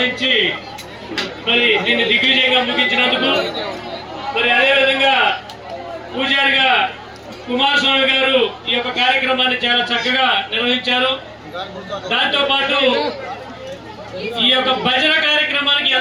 మరి దీన్ని దిగ్విజయంగా ముగించినందుకు. మరి అదేవిధంగా పూజారిగా కుమారస్వామి గారు ఈ యొక్క కార్యక్రమాన్ని చాలా చక్కగా నిర్వహించారు. దాంతో పాటు ఈ యొక్క భజన కార్యక్రమానికి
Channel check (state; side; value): identical; both; correlation 1.00